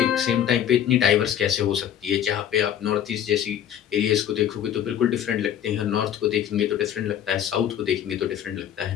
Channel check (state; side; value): quieter; right; 10.0 dB